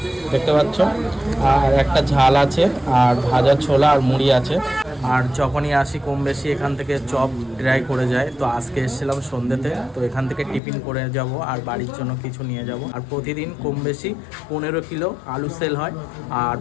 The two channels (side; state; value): right; drops out; at 10.6 s